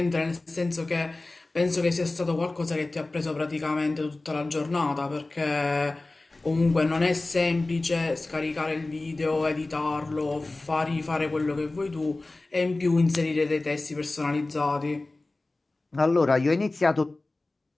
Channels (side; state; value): right; quieter; 3.0 dB